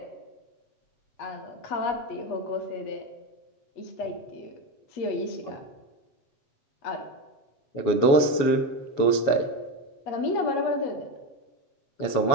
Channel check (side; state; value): right; late; 7.2 ms